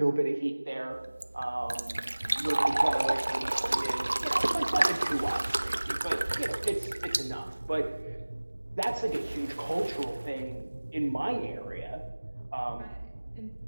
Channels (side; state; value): both; inverted; correlation -1.00